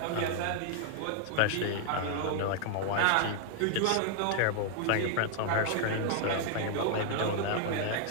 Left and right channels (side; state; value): both; different; correlation 0.00